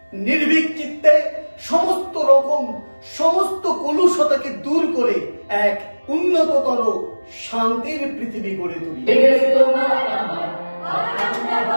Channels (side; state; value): both; inverted; correlation -1.00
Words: নির্ভীক চিত্তে সমস্ত কলুষতাকে দূর করে এক উন্নততর শান্তির পৃথিবী গড়ে তুলি।